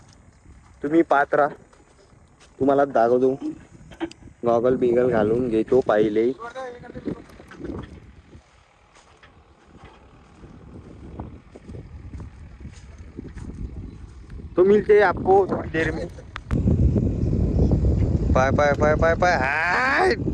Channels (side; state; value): both; identical; correlation 1.00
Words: तुम्ही पाहत राहा, तुम्हाला दाखवतो. गॉगल बिगल घालून घेतो पाहिले. तो मिलते आपको थोड़ी देर में. पाय पाय पाय पाय पाय हाय